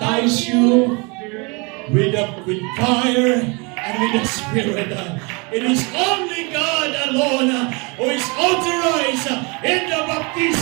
you with fire and with the Spirit. It is only God alone who is authorized in the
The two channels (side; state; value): left; quieter; 29.8 dB